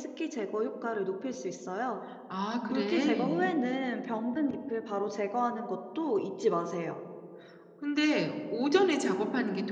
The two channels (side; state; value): both; identical; correlation 1.00